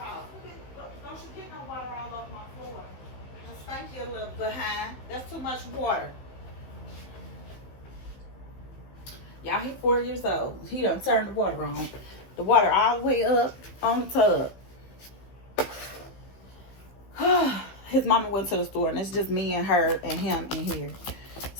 Don't you get no water all over my floor. Just spank you a little behind. That's too much water. Y'all, he's 4 years old. He done turned the water on. The water all the way up on the tub. His mama went to the store, and it's just me and her and him in here.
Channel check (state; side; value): late; right; 15 ms